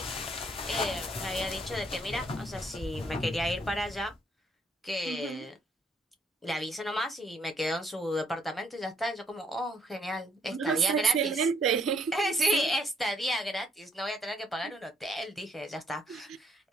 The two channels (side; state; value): both; normal; correlation 0.67